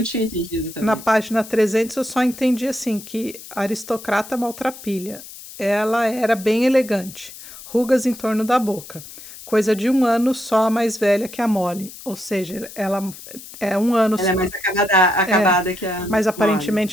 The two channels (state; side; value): noise; left; hiss, 15 dB below the sound